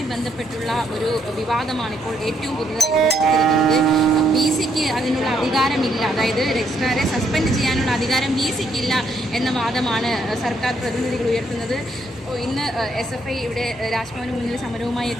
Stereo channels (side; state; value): both; normal; correlation 0.73